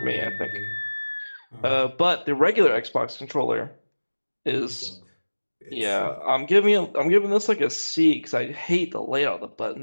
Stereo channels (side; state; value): both; inverted; correlation -1.00